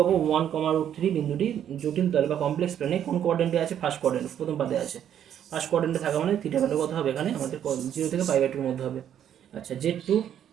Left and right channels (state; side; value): quieter; left; 9.9 dB